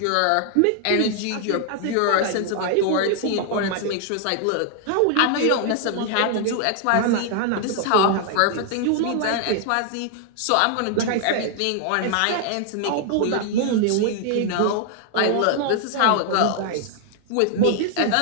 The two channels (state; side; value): different; both; correlation 0.00